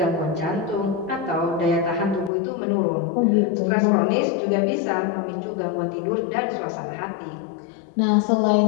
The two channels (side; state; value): right; drops out; at 2.3 s